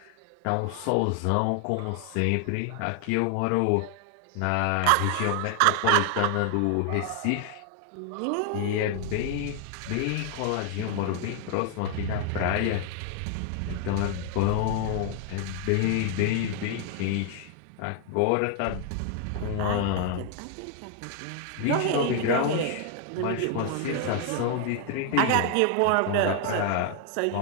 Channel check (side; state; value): both; different; correlation 0.00